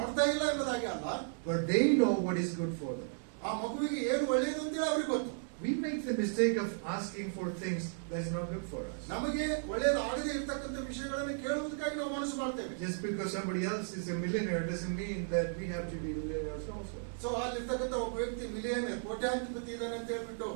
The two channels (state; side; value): silent; left; digital silence